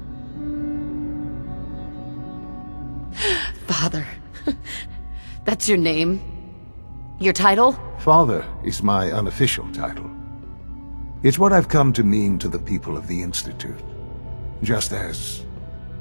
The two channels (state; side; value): inverted; both; correlation -1.00